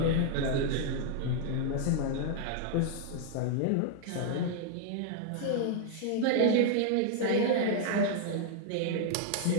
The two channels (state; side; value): different; both; correlation 0.00